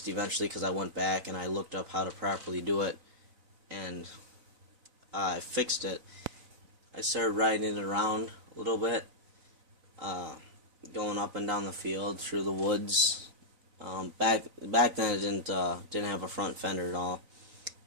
eventually because I went back and I looked up how to properly do it, and I fixed it. I started riding it around a little bit, going up and down the field through the woods. Back then it didn't have a front fender at all.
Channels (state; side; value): late; left; 4.0 ms